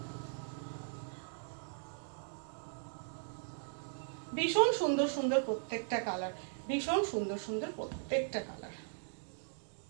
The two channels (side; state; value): left; silent; digital silence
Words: ভীষণ সুন্দর সুন্দর প্রত্যেকটা কালার, ভীষণ সুন্দর সুন্দর প্রত্যেকটা কালার।